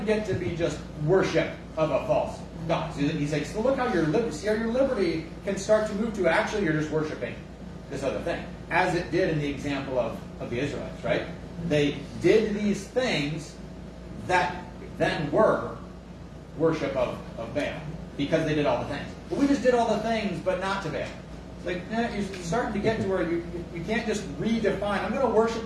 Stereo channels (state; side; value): identical; both; correlation 1.00